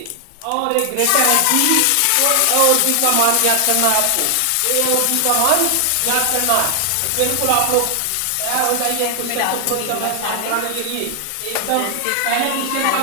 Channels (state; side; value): different; both; correlation 0.00